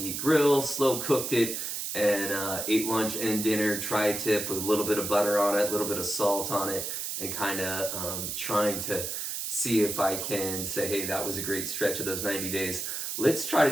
grill, slow cooked it, and ate lunch and dinner tri-tip with a little bit of butter on it, a little bit of salt on it, and kind of trying to see if I can say, hey, that was a great stretch of those 90 days. Let's try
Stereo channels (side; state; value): right; noise; hiss, 4 dB below the sound